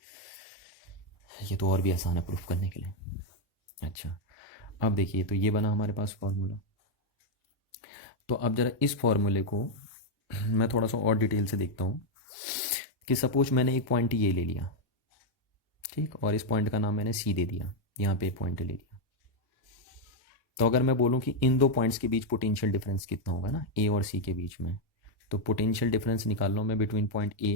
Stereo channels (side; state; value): both; normal; correlation 0.02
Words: ये तो और भी आसान है प्रूफ करने के लिए। अच्छा, अब देखिए, तो ये बना हमारे पास फॉर्मूला। तो अब जरा इस फॉर्मूले को मैं थोड़ा सा और डिटेल से देखता हूँ कि सपोज मैंने एक पॉइंट ये ले लिया, ठीक, और इस पॉइंट का नाम मैंने सी दे दिया, यहाँ पे एक पॉइंट ले लिया। तो अगर मैं बोलूँ कि इन दो पॉइंट्स के बीच पोटेंशियल डिफरेंस कितना होगा ना, ए और सी के बीच में, तो पोटेंशियल डिफरेंस निकाल लो मैं बिटवीन पॉइंट